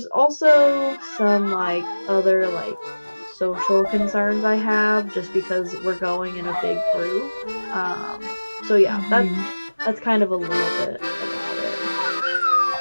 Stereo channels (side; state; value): both; inverted; correlation -1.00